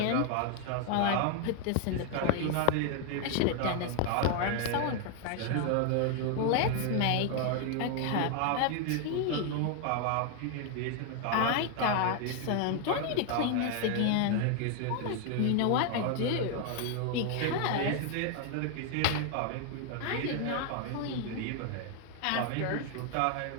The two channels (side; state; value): both; different; correlation 0.00